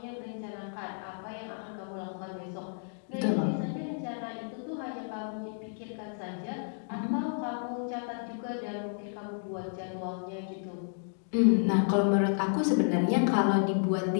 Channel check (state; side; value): silent; right; digital silence